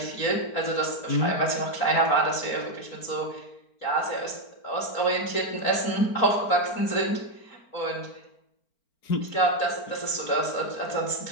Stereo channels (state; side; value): late; right; 4.4 ms